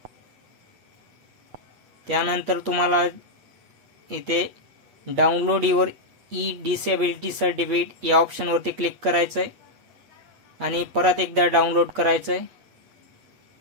त्यानंतर तुम्हाला इथे डाउनलोड युअर डिसेबिलिटी सर्टिफिकेट या ऑप्शन वरती क्लिक करायचं आहे आणि परत एकदा डाउनलोड करायचं आहे।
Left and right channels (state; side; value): late; left; 8.1 ms